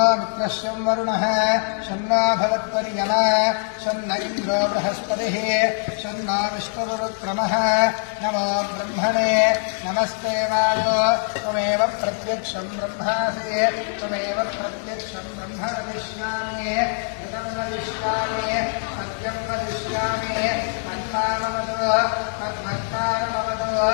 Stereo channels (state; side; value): silent; right; 61 dB below the other